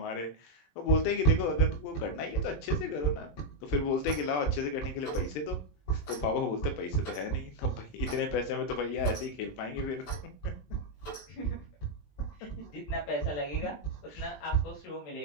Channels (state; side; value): late; right; 20 ms